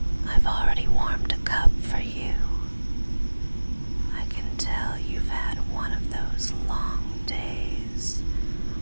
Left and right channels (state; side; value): inverted; both; correlation -1.00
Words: I've already warmed a cup for you. I can tell you've had one of those long days